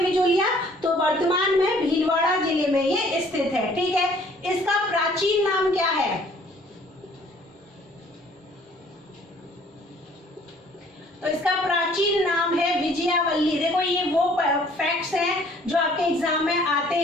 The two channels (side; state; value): both; normal; correlation 0.57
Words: बिजोलिया, तो वर्तमान में भीलवाड़ा जिले में ये स्थित है। ठीक है, इसका प्राचीन नाम क्या है, तो इसका प्राचीन नाम है विजयावल्ली। देखो ये वो फैक्ट्स हैं जो आपके एग्जाम में आते